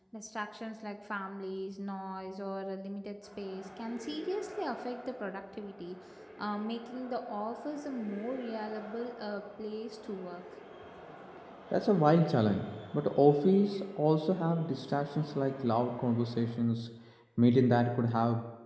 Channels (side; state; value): both; identical; correlation 1.00